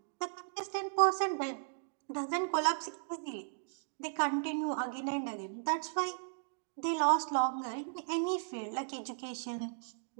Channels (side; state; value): left; silent; digital silence